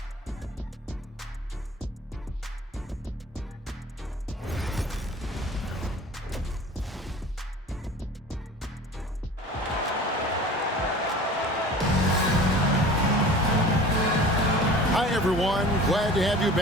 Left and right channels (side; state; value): both; normal; correlation 0.41